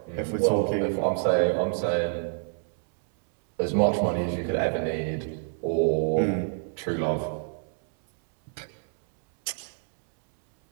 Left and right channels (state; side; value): silent; left; 60 dB below the other